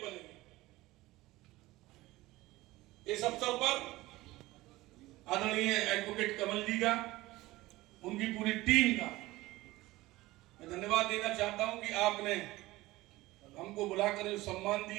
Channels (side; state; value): left; quieter; 18.8 dB